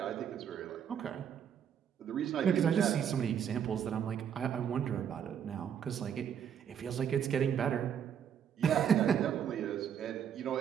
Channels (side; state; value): left; quieter; 8.5 dB